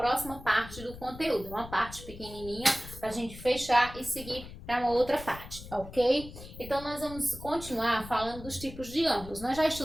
parte do conteúdo, uma parte pequenininha para a gente fechar e seguir para uma outra parte, ok? Então, nós vamos continuar falando dos tipos de ângulos. Nós já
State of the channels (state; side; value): noise; left; rumble, 14 dB below the sound